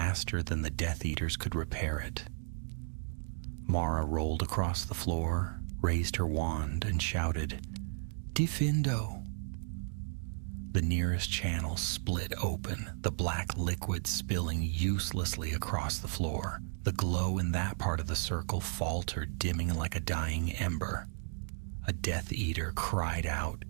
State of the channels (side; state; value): left; silent; digital silence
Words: than the Death Eaters could repair it. Mara rolled across the floor, raised her wand, and shouted, "Defendo!" The nearest channel split open, the black liquid spilling uselessly across the floor. The glow in that part of the circle faltered, dimming like a dying ember. A Death Eater cried out